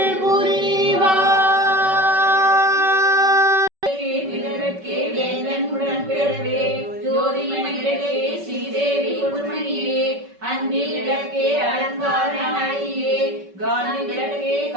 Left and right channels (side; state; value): left; late; 5.3 ms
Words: புரிவாய். அன்பிலக்கே அலங்காரனாயே காந்தி விளக்கே